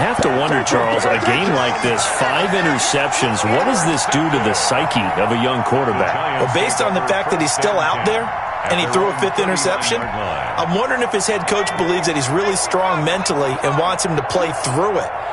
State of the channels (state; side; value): identical; both; correlation 1.00